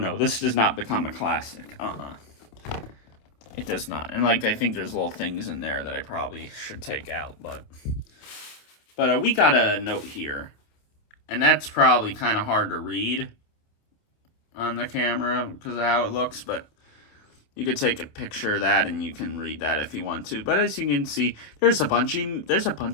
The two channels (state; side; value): late; right; 27 ms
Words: this does not become a classic. It does not. And like, I think there's little things in there that I probably should take out, but we got a note here, and that's probably kind of hard to read on the camera because of how it looks, but you could take a picture of that and you can read that if you want to. But as you can see, there's a bunch